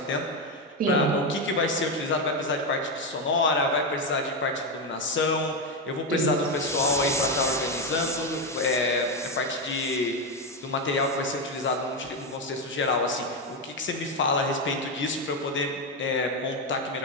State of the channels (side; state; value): both; normal; correlation 0.09